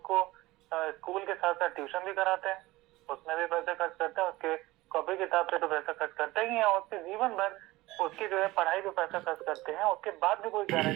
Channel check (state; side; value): quieter; left; 19.2 dB